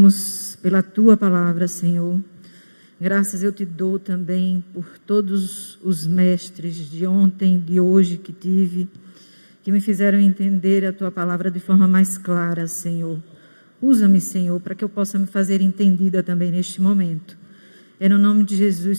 pela tua palavra, Senhor. Graças eu te dou também por todos os mestres de ontem, de hoje que tive, que me fizeram entender a tua palavra de forma mais clara, Senhor. Usa-me, Senhor, para que eu possa me fazer entendida também neste momento. É no nome de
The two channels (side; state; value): both; inverted; correlation -1.00